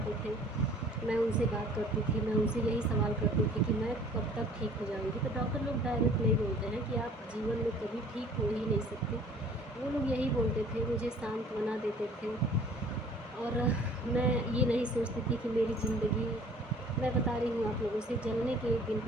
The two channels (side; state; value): both; normal; correlation 0.53